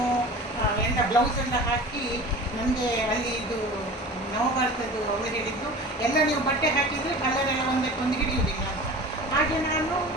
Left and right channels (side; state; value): both; normal; correlation 0.37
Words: ಬ್ಲೌಸ್ ಎಲ್ಲ ಹಾಕಿ, ನನಗೆ ಅಲ್ಲಿ ಇದು ನವಭಾರತದ್ದು ಅವರು ಹೇಳಿದ್ದು ಎಲ್ಲ ನೀವು ಬಟ್ಟೆ ಹಾಕಿದರೆ ಕಲರ್ ಎಲ್ಲ ಒಂದಕ್ಕೊಂದು ಹಿಡಿಯುವುದಿಲ್ಲ ಅಂತ. ಹಾಗೆ ನಾನು